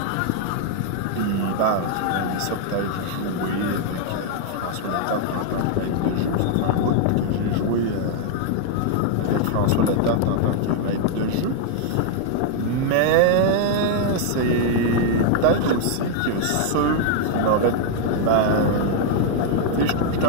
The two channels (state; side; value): different; both; correlation 0.00